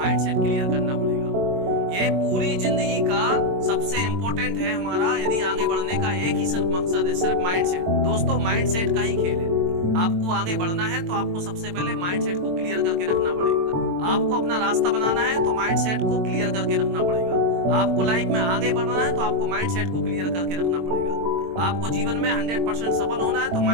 क्लियर करना पड़ेगा। ये पूरी जिंदगी का सबसे इंपॉर्टेंट है हमारा, यदि आगे बढ़ने का एक ही सिर्फ मकसद है, सिर्फ माइंडसेट। दोस्तों माइंडसेट का ही खेल है। आपको आगे बढ़ना है तो आपको सबसे पहले माइंडसेट को क्लियर करके रखना पड़ेगा। आपको अपना रास्ता बनाना है तो माइंडसेट को क्लियर करके रखना पड़ेगा। आपको लाइफ में आगे बढ़ना है तो आपको माइंडसेट को क्लियर करके रखना पड़ेगा। आपको जीवन में 100% सफल होना है तो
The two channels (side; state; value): left; late; 22 ms